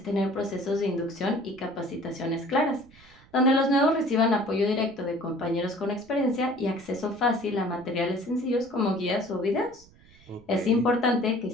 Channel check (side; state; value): right; noise; rumble, 26 dB below the sound